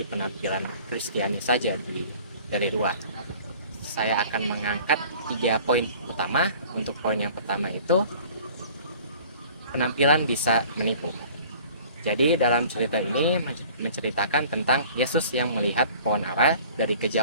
penampilan Kristiani saja dari luar. Saya akan mengangkat 3 poin utama. Untuk poin yang pertama itu, penampilan bisa menipu. Jadi dalam cerita ini menceritakan tentang Yesus yang melihat pohon ara dari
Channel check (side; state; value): both; inverted; correlation -0.49